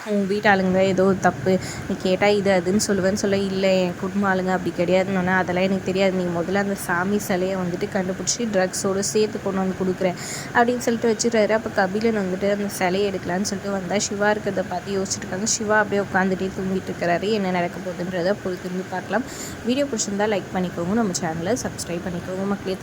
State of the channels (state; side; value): identical; both; correlation 1.00